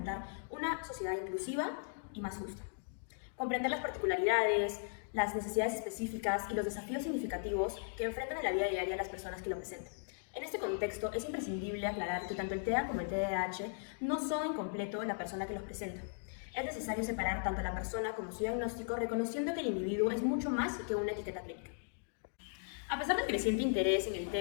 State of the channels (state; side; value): silent; right; digital silence